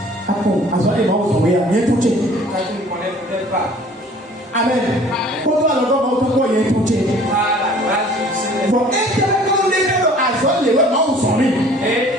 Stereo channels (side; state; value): both; normal; correlation 0.51